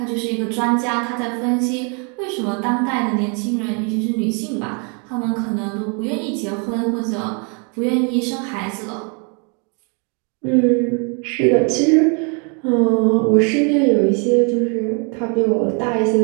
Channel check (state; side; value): quieter; left; 36.6 dB